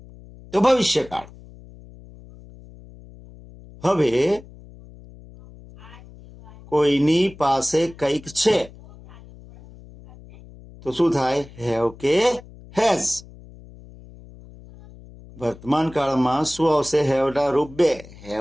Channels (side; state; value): left; noise; hum, 20 dB below the sound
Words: તો ભવિષ્યકાળ. હવે કોઈની પાસે કંઈક છે તો શું થાય? હેવ કે હેઝ. વર્તમાન કાળમાં શું આવશે? હેવના રૂપ 2,